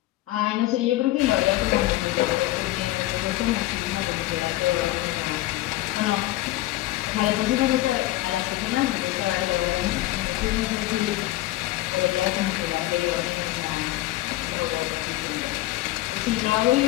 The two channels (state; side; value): quieter; right; 17.1 dB